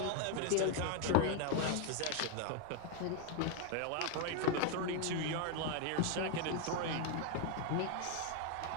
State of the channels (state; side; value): different; both; correlation 0.01